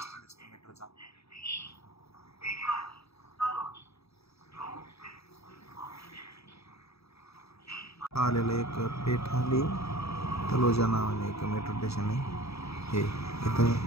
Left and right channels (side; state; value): right; late; 0.78 ms